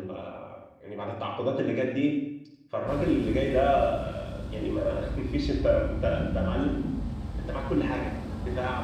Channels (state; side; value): identical; both; correlation 1.00